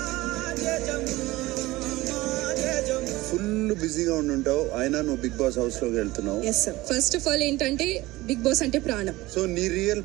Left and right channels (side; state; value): left; quieter; 19.1 dB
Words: ఫుల్ బిజీగా ఉండుంటావు, అయినా నువ్వు బిగ్ బాస్ హౌస్ లోకి వెళ్తున్నావు. Yes sir. First of all ఏంటంటే బిగ్ బాస్ అంటే ప్రాణం. సో నీ రియల్